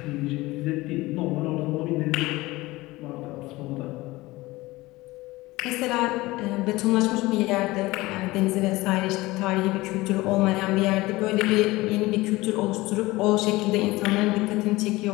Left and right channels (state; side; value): quieter; right; 20.0 dB